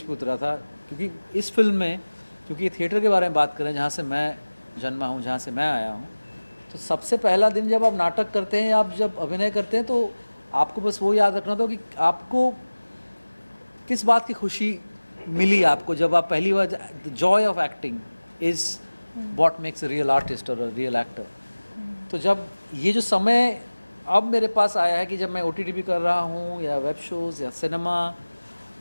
पे उतरा था, क्योंकि इस फिल्म में, क्योंकि थिएटर के बारे में बात करें जहाँ से मैं जन्मा हूँ, जहाँ से मैं आया हूँ, तो सबसे पहला दिन जब आप नाटक करते हैं, आप जब अभिनय करते हैं, तो आपको बस वो याद रखना था कि आपको किस बात की खुशी मिली आपको जब आप पहली बार। The joy of acting is what makes a real artist और अ रियल एक्टर। तो जब ये जो समय अब मेरे पास आया है कि जब मैं OTT भी कर रहा हूँ या वेब शोज़ या सिनेमा,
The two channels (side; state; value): both; inverted; correlation -1.00